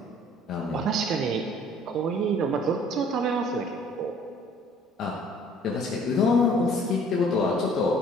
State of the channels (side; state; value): both; normal; correlation 0.55